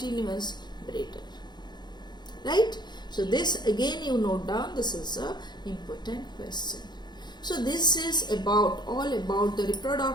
breeder. right? So this again you note down, this is a important question. So this is all about the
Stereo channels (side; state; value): right; late; 0.21 ms